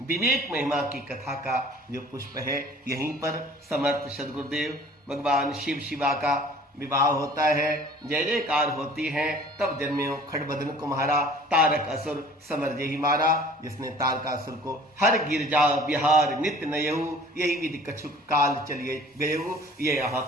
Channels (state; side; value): normal; both; correlation 0.49